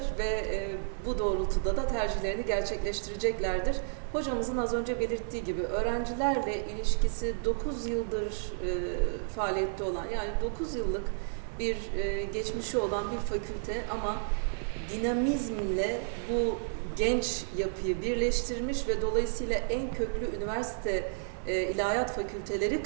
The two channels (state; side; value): silent; left; 57 dB below the other